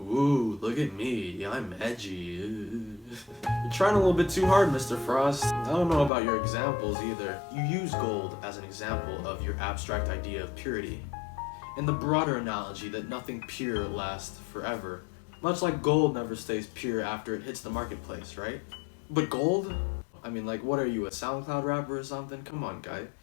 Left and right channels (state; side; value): drops out; right; at 6.1 s